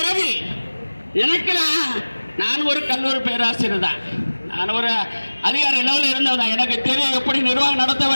எனக்கு நான் ஒரு கல்லூரி பேராசிரியர் தான். நான் ஒரு அதிகாரி லெவலில் இருந்தவன், எனக்கு தெரியும் எப்படி நிர்வாகம் நடத்த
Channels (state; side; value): inverted; both; correlation -1.00